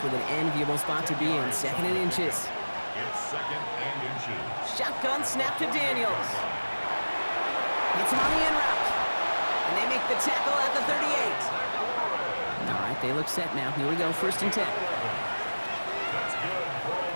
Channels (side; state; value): both; inverted; correlation -1.00